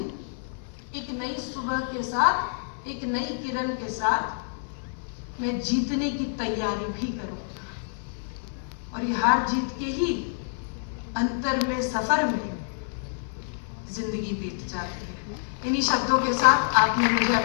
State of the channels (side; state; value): right; silent; 60 dB below the other